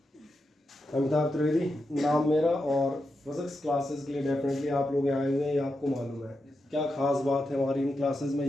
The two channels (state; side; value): normal; both; correlation 0.87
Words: अमिताभ त्रिवेदी नाम मेरा, और फिजिक्स क्लासेस के लिए डेफिनेटली आप लोग आए हुए हैं, ये आपको मालूम है। क्या खास बात है हमारी इन क्लासेस में,